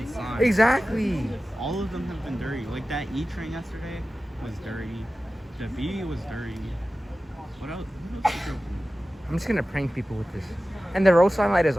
signs. Exactly. All of them have been dirty. Like that E train yesterday was dirty. The V was dirty. What else? What else is there? I'm just gonna prank people with this. And the road sign light is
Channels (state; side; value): normal; both; correlation 0.95